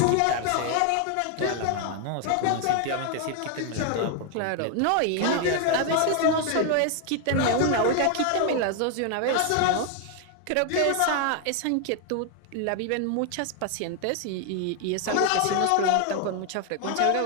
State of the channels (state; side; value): different; both; correlation 0.00